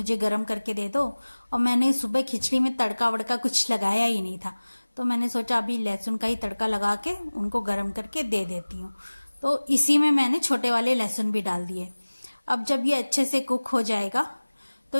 गर्म करके दे दो। और मैंने सुबह खिचड़ी में तड़का वड़का कुछ लगाया ही नहीं था, तो मैंने सोचा अभी लहसुन का ही तड़का लगा के उनको गर्म करके दे देती हूँ। तो इसी में मैंने छोटे वाले लहसुन भी डाल दिए। अब जब ये अच्छे से कुक हो जाएगा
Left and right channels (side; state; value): both; inverted; correlation -1.00